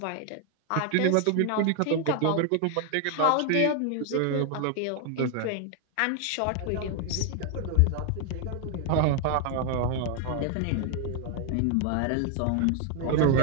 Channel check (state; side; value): different; both; correlation 0.00